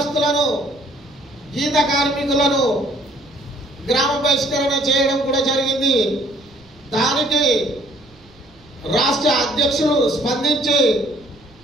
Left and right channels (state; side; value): noise; right; rumble, 28 dB below the sound